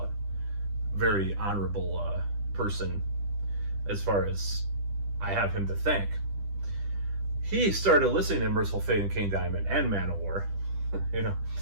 Very honorable person, as far as I have him to thank. He started listening to Merciful Fate and King Diamond and Manowar,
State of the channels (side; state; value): left; late; 10 ms